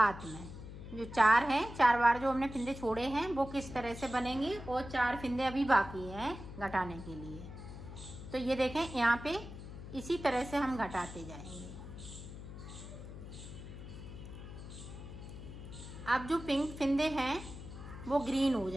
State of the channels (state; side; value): noise; left; hum, 11 dB below the sound